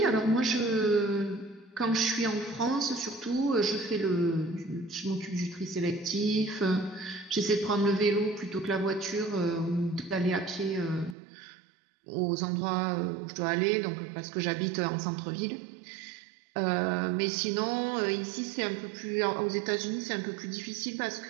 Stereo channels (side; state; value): left; drops out; at 11.2 s